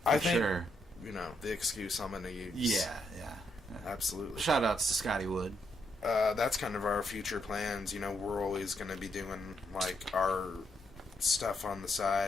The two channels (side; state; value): both; normal; correlation 0.78